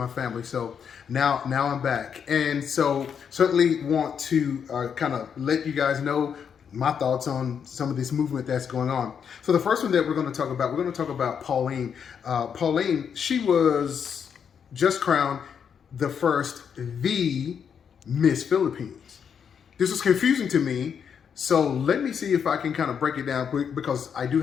family, so now I'm back, and so certainly want to kind of let you guys know my thoughts on some of this movement that's going on. So the first one that we're going to talk about Pauline. Pauline, she was just crowned the first Miss Philippines. This was confusing to me, so let me see if I can kind of break it down quick, because I do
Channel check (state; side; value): quieter; right; 7.3 dB